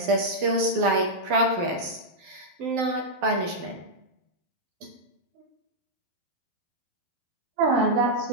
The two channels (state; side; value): late; left; 12 ms